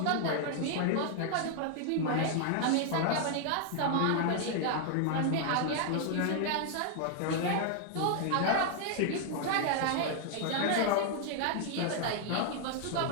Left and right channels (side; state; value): both; different; correlation 0.00